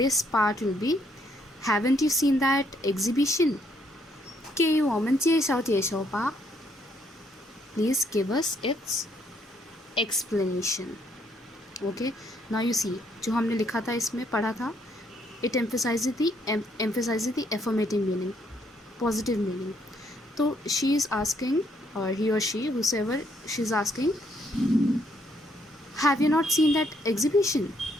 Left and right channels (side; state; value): both; normal; correlation 0.70